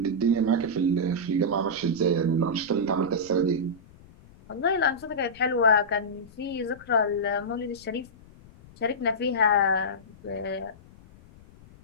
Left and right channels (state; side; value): noise; left; rumble, 23 dB below the sound